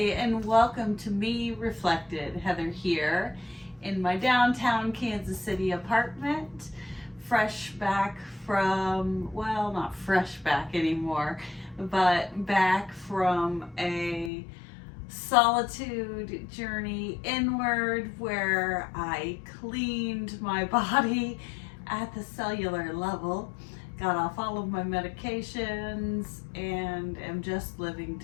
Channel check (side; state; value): right; drops out; at 14.3 s